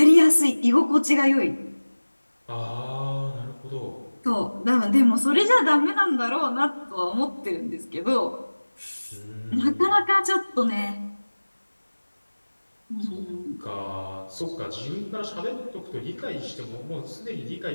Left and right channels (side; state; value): both; inverted; correlation -1.00